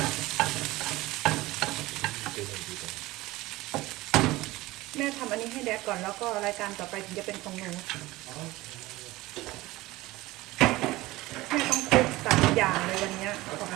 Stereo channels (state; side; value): quieter; left; 19.1 dB